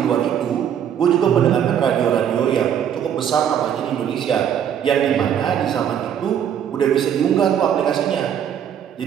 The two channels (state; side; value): quieter; left; 9.1 dB